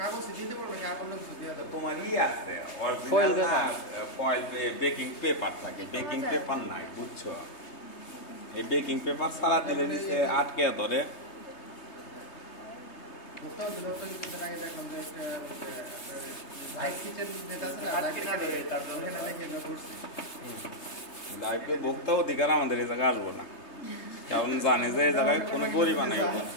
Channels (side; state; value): right; late; 3.3 ms